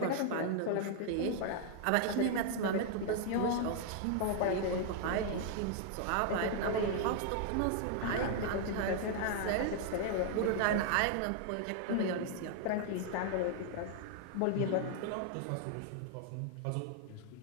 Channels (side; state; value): both; different; correlation 0.00